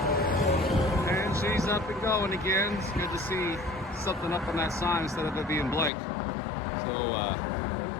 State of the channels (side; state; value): right; drops out; at 5.9 s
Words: And she's up and going again. It's good to see something up on that sign instead of it being blank. So,